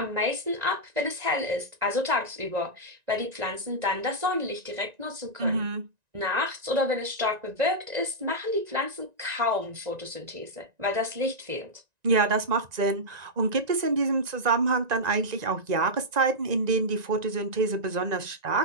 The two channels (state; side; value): late; left; 1.9 ms